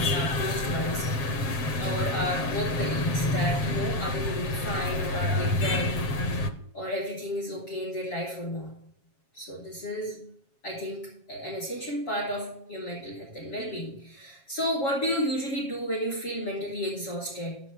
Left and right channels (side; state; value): right; late; 7.4 ms